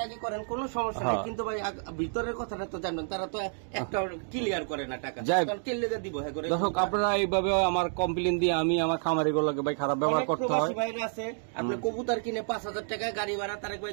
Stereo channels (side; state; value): left; silent; 58 dB below the other